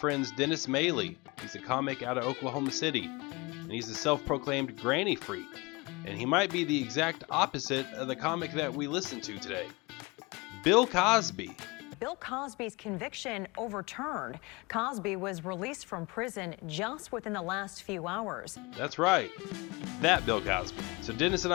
Dennis Maley. He's a comic out of Oklahoma City, and he's a self-proclaimed granny freak, and he might be the exact opposite of the comic that we listen to today. Bill Cosby. Bill Cosby's conviction overturned. Cosby was released from prison just within the last few hours. That's right, that Bill Cosby. So Dennis and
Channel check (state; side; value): quieter; right; 25.5 dB